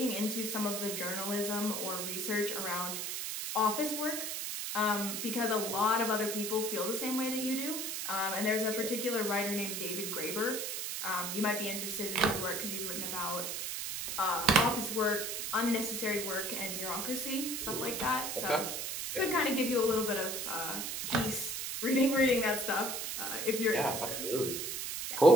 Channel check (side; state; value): right; noise; hiss, 3 dB below the sound